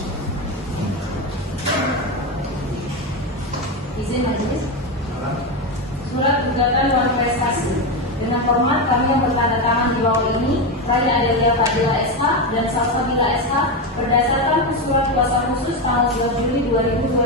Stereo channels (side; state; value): both; normal; correlation 0.13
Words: Izin majelis. Surat gugatan non prestasi. Dengan hormat kami yang bertanda tangan di bawah ini, Raya Adelia Fadila SH dan Salsabila SH berdasarkan surat kuasa khusus tanggal 2 Juli